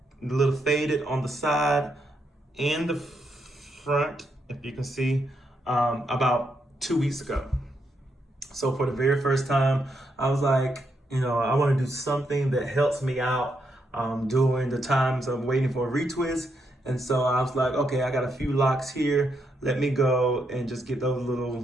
the little faded on the side and the front, if you can see, about 2 weeks ago. So for the very first time, I was like, I want to do something that helps me out during the times of waiting for a retwist. And so I was like, okay, I got a few locks here. Let me go and just get those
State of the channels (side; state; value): both; normal; correlation 0.79